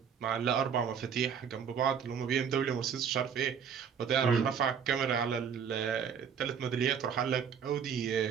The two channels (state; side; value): quieter; left; 7.4 dB